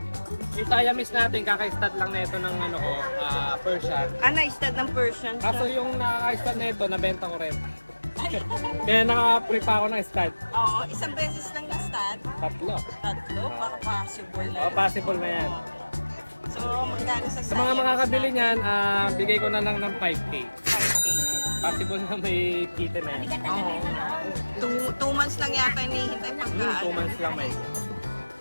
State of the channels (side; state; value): both; inverted; correlation -1.00